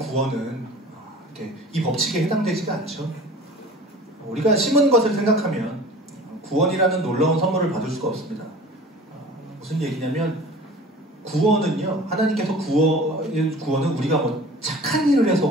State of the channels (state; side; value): normal; both; correlation 0.42